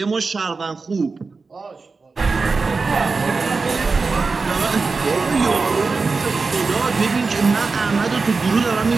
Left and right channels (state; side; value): quieter; left; 4.3 dB